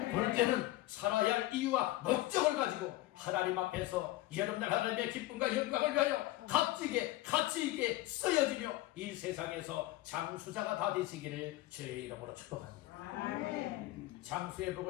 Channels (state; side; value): quieter; right; 17.0 dB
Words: 둘째는 살아야 할 이유와 목적을 가지고 하나님 앞에서 여러분들 하나님의 기쁨과 영광을 위하여 값지게 가치있게 쓰여지며 이 세상에서 장수자가 다 되시기를 주의 이름으로 축복합니다. 장수의